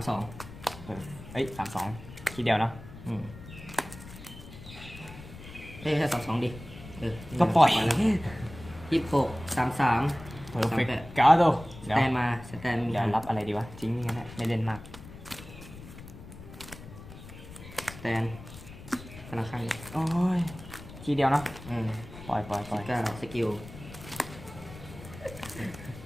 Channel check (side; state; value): left; noise; rumble, 15 dB below the sound